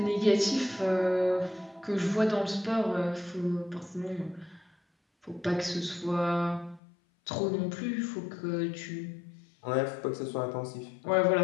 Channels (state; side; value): drops out; right; at 6.8 s